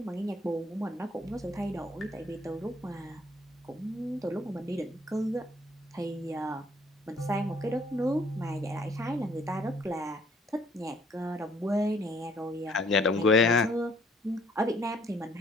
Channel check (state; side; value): normal; both; correlation 0.62